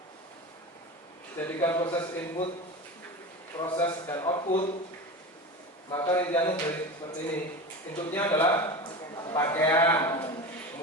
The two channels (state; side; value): normal; both; correlation 0.28